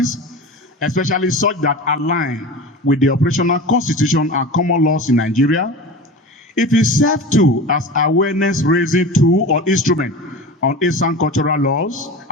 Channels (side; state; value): both; normal; correlation 0.32